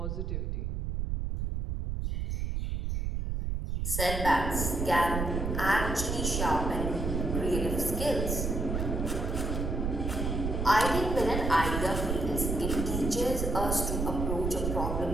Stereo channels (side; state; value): right; noise; rumble, 1 dB below the sound